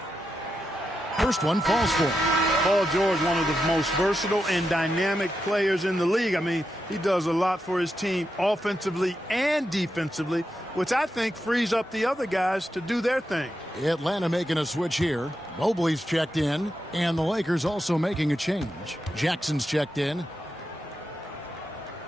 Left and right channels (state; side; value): normal; both; correlation 0.86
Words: First one falls for him. Paul George, one of the most versatile and dynamic players in the league. I mean, he does a lot for his team offensively and defensively, which I think frees up the other guys to do their thing. Atlanta making a switch here. Mobley's checked in, and the Lakers also making a change. Jackson's checked in.